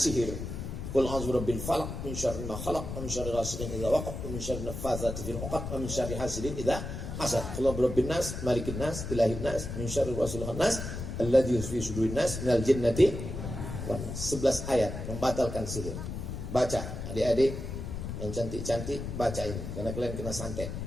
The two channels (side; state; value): left; noise; rumble, 6 dB below the sound